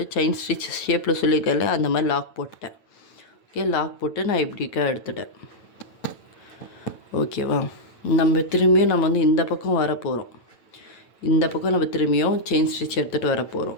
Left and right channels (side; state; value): right; late; 9.0 ms